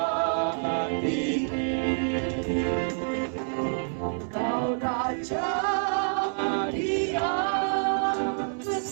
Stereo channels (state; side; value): silent; left; 59 dB below the other